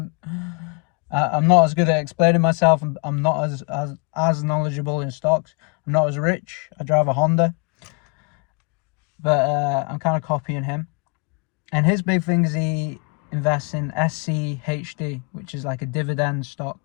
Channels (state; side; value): quieter; right; 32.7 dB